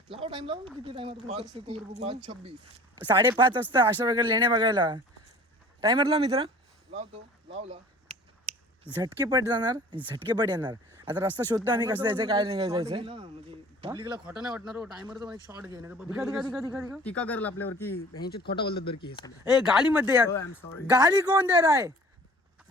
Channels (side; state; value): both; normal; correlation 0.48